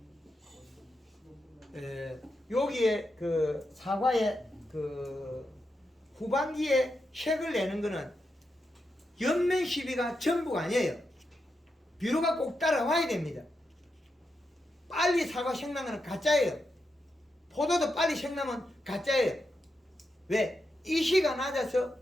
여기에 사과의 후반기에 색을 내는 거는 연면 시비가 전부가 아니에요. 비료가 꼭 따라와야 됩니다. 빨리 사과 색나는 거는 가짜예요. 포도도 빨리 색나면 가짜예요. 왜? 이시가 낮아서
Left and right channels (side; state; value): both; normal; correlation 0.86